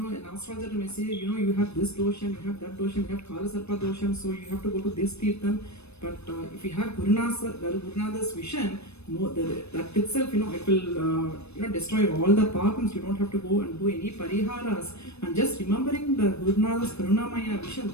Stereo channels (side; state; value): right; late; 0.80 ms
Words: astrologer may say, you have this dosham, you have that dosham, you have Kala Sarpa dosham, so you have to go to this Tirtham. But if you have Gurunada's vision, that itself, it will destroy all the papams. You don't have to go and do any pariharas, and just remembering the Gurunada's Karunamaya vision,